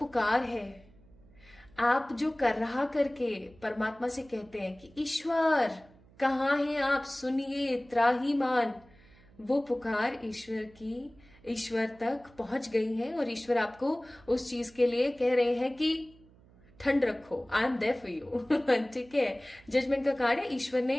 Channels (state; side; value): noise; right; hum, 26 dB below the sound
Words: है, आप जो कर रहा करके परमात्मा से कहते हैं कि ईश्वर कहाँ हैं आप, सुनिए, त्राहीमान, वो पुकार ईश्वर तक पहुंच गई है और ईश्वर आपको उस चीज के लिए कह रहे हैं कि ठंड रखो, I am there for you, ठीक है। जजमेंट का कार्ड है। ईश्वर